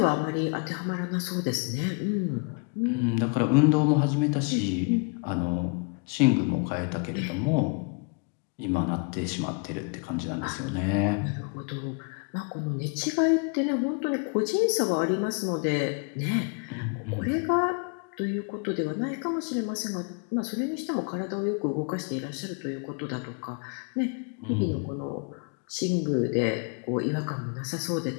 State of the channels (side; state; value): right; quieter; 35.1 dB